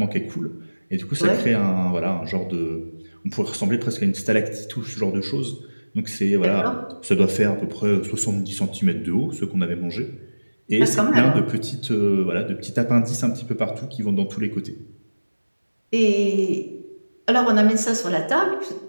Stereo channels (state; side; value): inverted; both; correlation -1.00